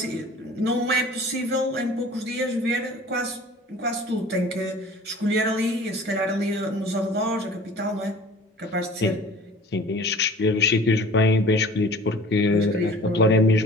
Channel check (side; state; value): both; normal; correlation 0.45